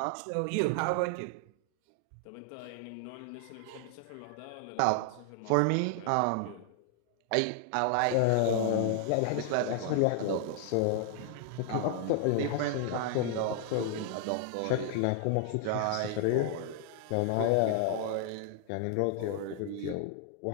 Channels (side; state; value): both; different; correlation 0.00